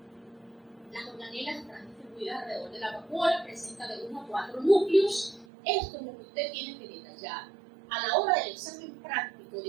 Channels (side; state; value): left; drops out; at 5.5 s